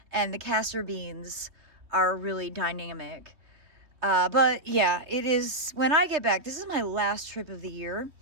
and the castor beans are really dynamic. But yeah, it is, when I get back, this is my last trip of the year.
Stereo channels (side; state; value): left; late; 3.3 ms